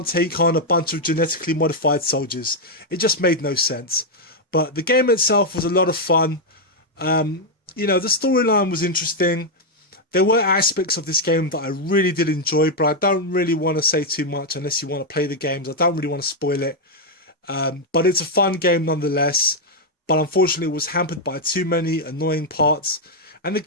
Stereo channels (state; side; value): normal; both; correlation -0.01